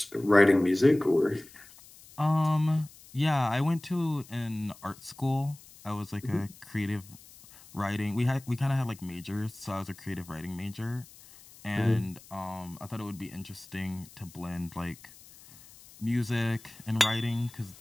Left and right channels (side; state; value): left; noise; hiss, 22 dB below the sound